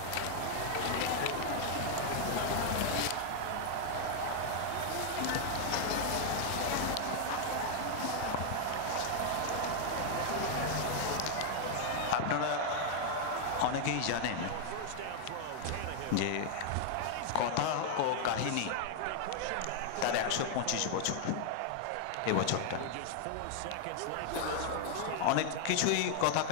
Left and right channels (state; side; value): different; both; correlation 0.00